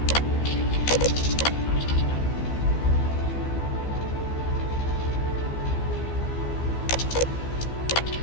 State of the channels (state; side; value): late; right; 15 ms